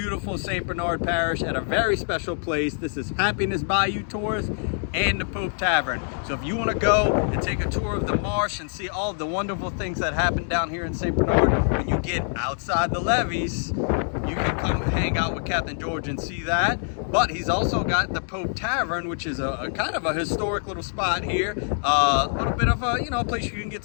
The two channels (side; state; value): right; silent; digital silence